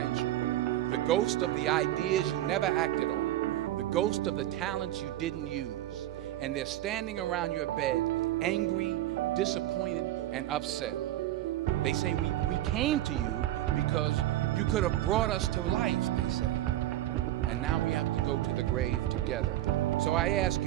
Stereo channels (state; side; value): quieter; left; 14.1 dB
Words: The ghost of the ideas you never acted on. The ghost of the talents you didn't use. And they're standing around your bed, angry, disappointed, and upset. They say, we came to you because you could have brought us to life, they say. And now we have to go to the grave together. So I ask